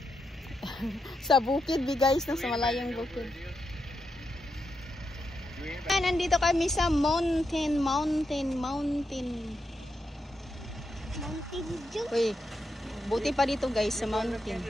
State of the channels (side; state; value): both; normal; correlation 0.85